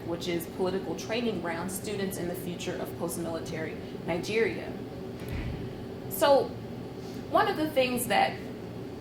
which is Political Training Ground: Students in the Future of Post-Military Nigeria. So one of the things that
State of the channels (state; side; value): identical; both; correlation 1.00